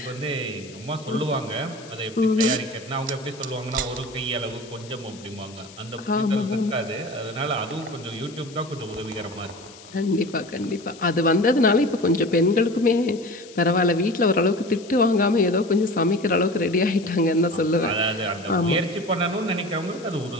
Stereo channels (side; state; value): left; noise; hiss, 20 dB below the sound